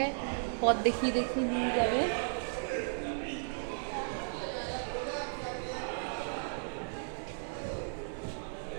পথ দেখিয়ে দেখিয়ে নিয়ে যাবে।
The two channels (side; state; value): left; silent; 54 dB below the other